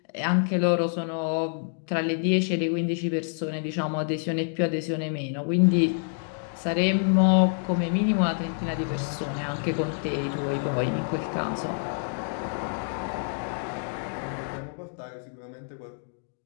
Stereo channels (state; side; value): silent; right; digital silence